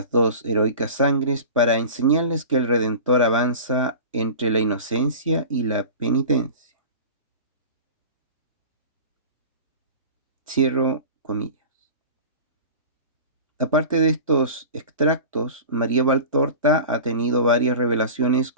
dos heroicas sangres para enseñarles que el Redentor avanza entre la inocencia y la penitencia. Cierro comillas. Aparte de estos extractos, María Valtorta ha tenido varias revelaciones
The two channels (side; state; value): both; inverted; correlation -0.35